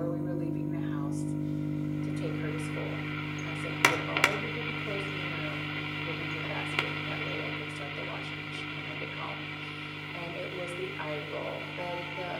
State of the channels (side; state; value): both; identical; correlation 1.00